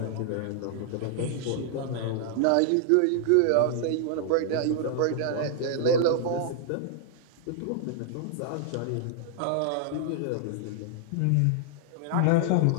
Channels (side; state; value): both; different; correlation 0.00